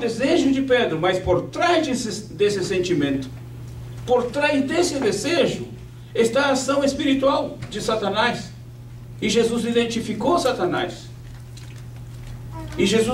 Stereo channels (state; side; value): identical; both; correlation 1.00